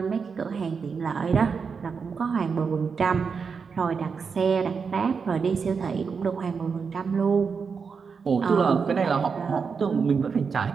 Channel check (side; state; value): left; quieter; 5.6 dB